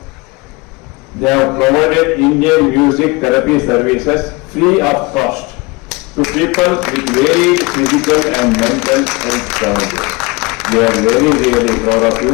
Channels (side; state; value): right; quieter; 25.0 dB